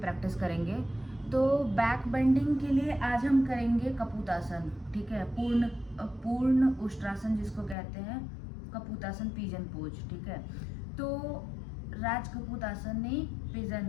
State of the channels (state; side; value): drops out; right; at 7.8 s